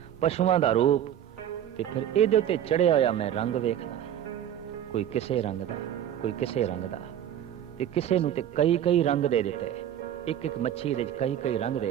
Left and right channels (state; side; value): quieter; left; 10.5 dB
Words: पशुआं दा रूप, ते फिर इहदे ते चढ़िया होया मैं रंग वेखदा। कोई किसे रंग दा, कोई किसे रंग दा, ते किसे नूं ते कई कई रंग दे दिते। एक एक मच्छी दे कई कई रंग